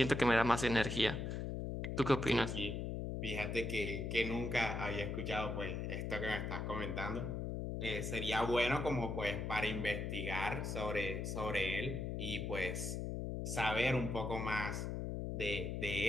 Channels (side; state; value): left; noise; hum, 3 dB below the sound